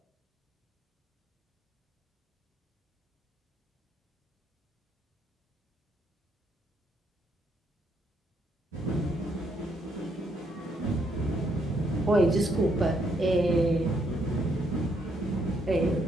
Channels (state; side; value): normal; both; correlation 0.73